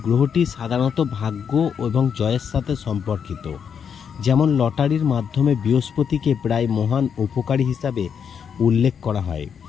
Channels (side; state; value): right; quieter; 7.3 dB